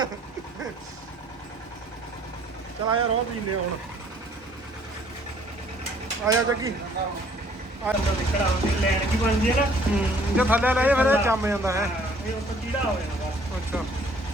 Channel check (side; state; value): both; normal; correlation 0.59